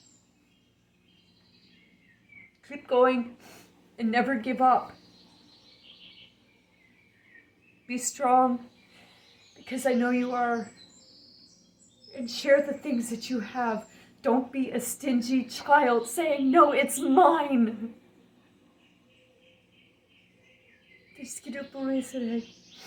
Keep going and never give up. Be strong, because I know you are. And share the things that you have. Don't be a stingy child saying, no, it's mine.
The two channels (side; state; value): both; identical; correlation 1.00